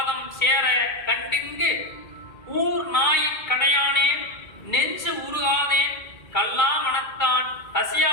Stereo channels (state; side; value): late; right; 2.3 ms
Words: சேர கண்டிங்கு ஊர் நாய் கடையானேன் நெஞ்சு உருகாதேன் கல்லா மனத்தான்